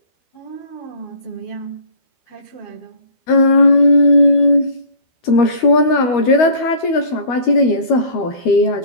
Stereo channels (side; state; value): right; late; 13 ms